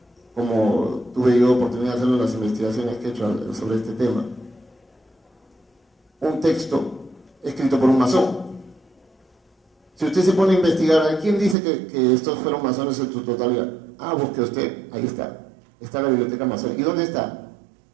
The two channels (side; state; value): left; drops out; at 11.6 s